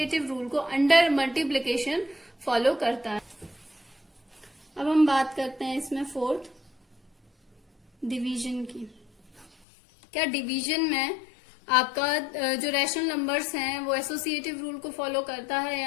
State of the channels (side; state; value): right; drops out; at 9.5 s